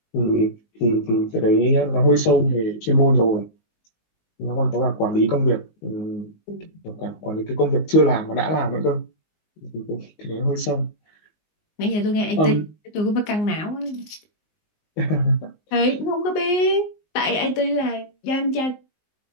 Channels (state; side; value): late; right; 19 ms